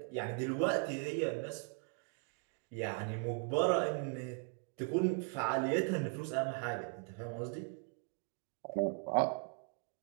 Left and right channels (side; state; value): left; quieter; 38.9 dB